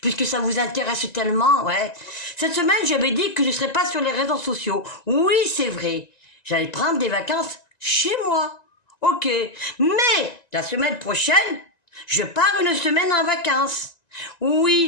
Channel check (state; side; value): late; right; 1.9 ms